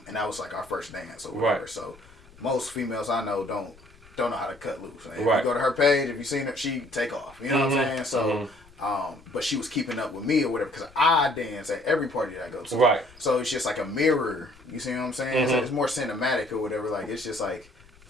And that was like our first dance or whatever. Right. So most females I know don't know how to cut loose. If you go to her page, if you seen her, she take off. You know what I'm saying? So, but she was keeping up with me or whatever, because I dance at every party that I go to. Right. So it's just like a mirror. You see what I'm saying? So it's more cinematic or whatever. Like, it's just like,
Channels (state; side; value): noise; left; rumble, 25 dB below the sound